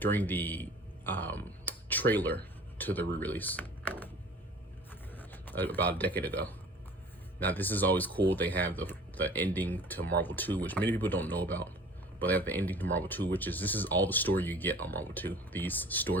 the trailer to the re-release about a decade ago. Now this is always cool. They have the ending to Marvel 2, which many people don't know about, but they have the ending to Marvel 2, which is, this is all the story you get on Marvel 2, these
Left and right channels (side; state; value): both; normal; correlation 0.46